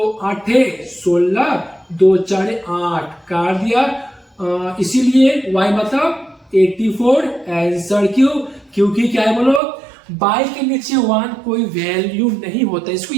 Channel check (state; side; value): drops out; left; at 9.6 s